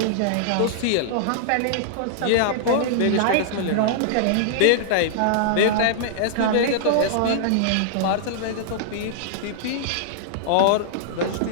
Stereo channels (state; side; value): different; both; correlation -0.01